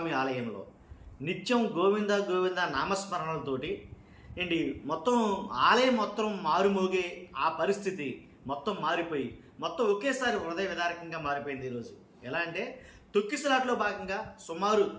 ఆలయంలో నిత్యం గోవింద గోవింద నామస్మరణలతోటి ఏంటి మొత్తం ఆలయం మొత్తం మారుమోగే ఆ పరిస్థితి మొత్తం మారిపోయి మొత్తం ఒకేసారి హృదయ విదారకంగా మారిపోయింది ఈరోజు. ఎలా అంటే తొక్కిసలాట్లో భాగంగా సుమారు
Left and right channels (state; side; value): identical; both; correlation 1.00